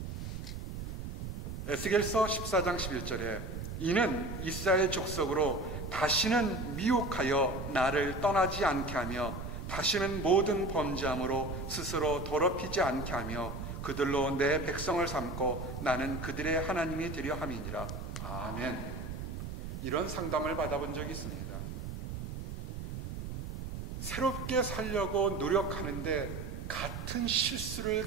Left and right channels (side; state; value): right; noise; rumble, 6 dB below the sound